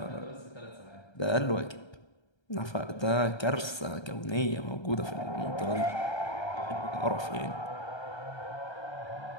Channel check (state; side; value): late; right; 1.3 ms